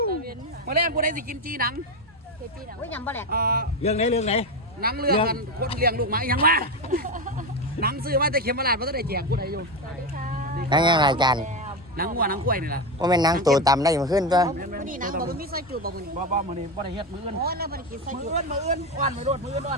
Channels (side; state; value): both; normal; correlation 0.15